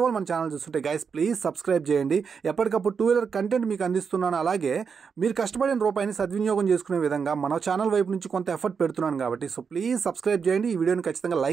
వాళ్ళు మన ఛానల్ చూస్తుంటే గైస్ ప్లీజ్ సబ్స్క్రైబ్ చేయండి. ఎప్పటికప్పుడు టూ వీలర్ కంటెంట్ మీకు అందిస్తున్నాను. అలాగే మీరు కష్టపడిన రూపాయిని సద్వినియోగం చేసుకునే విధంగా మన ఛానల్ వైపు నుంచి కొంత ఎఫర్ట్ పెడుతున్నాను కాబట్టి సో ప్లీజ్ సబ్స్క్రైబ్ చేయండి. ఈ వీడియోని ఖచ్చితంగా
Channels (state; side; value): quieter; left; 6.0 dB